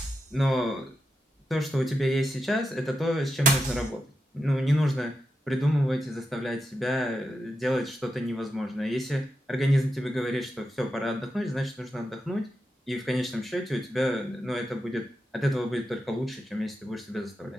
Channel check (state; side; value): normal; both; correlation 0.87